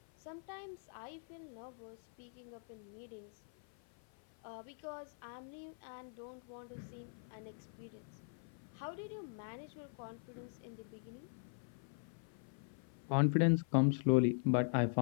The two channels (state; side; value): silent; right; 50 dB below the other